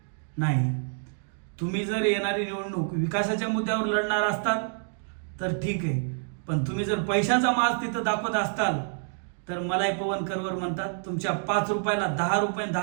नाही. तुम्ही जर येणारी निवडणूक विकासाच्या मुद्द्यावर लढणार असताल तर ठीक आहे, पण तुम्ही जर पैशाचा माज तिथं दाखवत असताल तर मलाही पवन करवर म्हणतात. तुमच्या 5 रुपयाला 10 रुपये,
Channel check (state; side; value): silent; left; 60 dB below the other